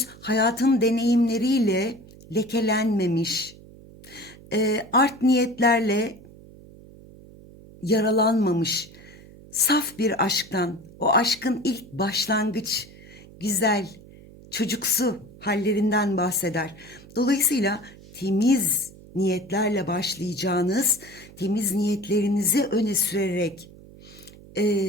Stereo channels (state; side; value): noise; right; hum, 20 dB below the sound